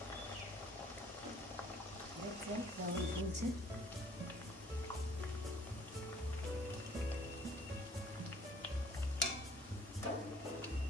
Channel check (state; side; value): normal; both; correlation 0.57